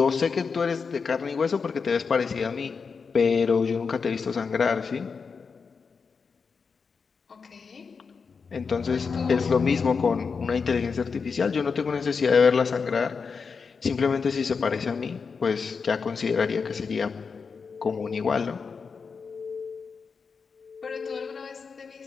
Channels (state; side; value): quieter; right; 5.3 dB